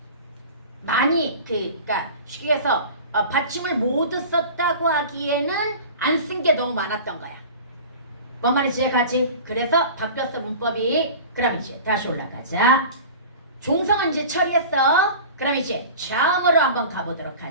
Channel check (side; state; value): both; inverted; correlation -0.38